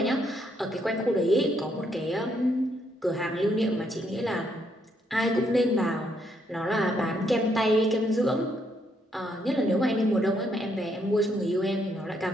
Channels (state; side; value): normal; both; correlation 0.74